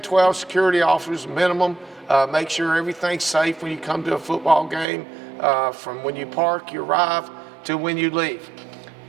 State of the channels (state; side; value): drops out; left; at 4.9 s